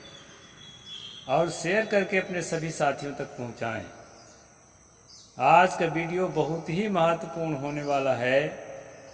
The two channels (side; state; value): both; identical; correlation 1.00